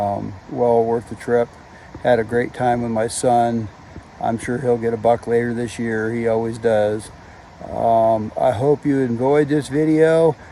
worth the trip. Had a great time with my son. I'm sure he'll get a buck later this year. He always does. I hope you enjoyed this video.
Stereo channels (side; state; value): both; identical; correlation 1.00